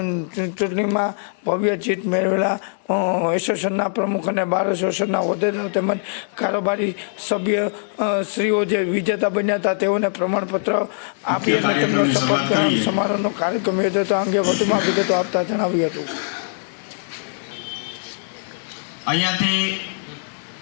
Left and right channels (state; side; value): silent; right; 62 dB below the other